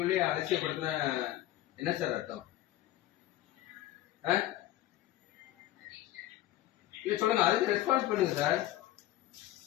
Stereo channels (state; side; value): quieter; right; 14.4 dB